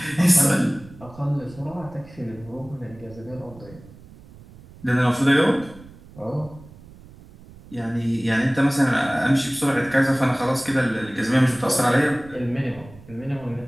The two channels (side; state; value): right; noise; rumble, 21 dB below the sound